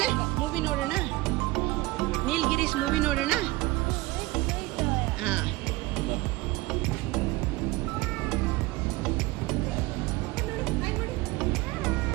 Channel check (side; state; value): left; quieter; 20.6 dB